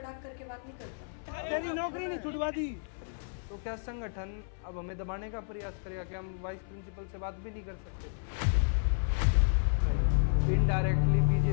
करके बात नहीं करता? तेरी नौकरी नहीं छुड़वा दी। तो क्या संगठन अब हमें दबाने का प्रयास करेगा कि हम वाइस प्रिंसिपल से बात भी नहीं कर सकते? इनडायरेक्टली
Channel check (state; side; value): silent; right; 56 dB below the other